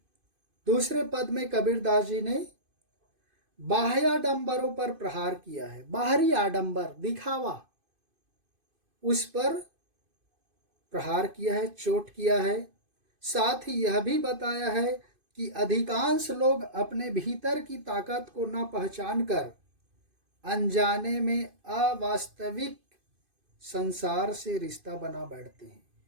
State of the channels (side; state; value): left; late; 2.5 ms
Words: दूसरे पद में कबीरदास जी ने बाह्य आडंबरों पर प्रहार किया है। बाहरी आडंबर, दिखावा, उस पर प्रहार किया है, चोट किया है। साथ ही यह भी बताया है कि अधिकांश लोग अपने भीतर की ताकत को न पहचान कर अनजाने में अवास्तविक संसार से रिश्ता बना बैठते हैं।